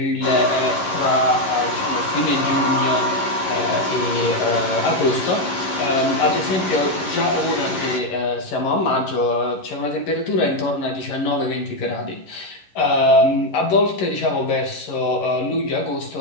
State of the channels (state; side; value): late; right; 11 ms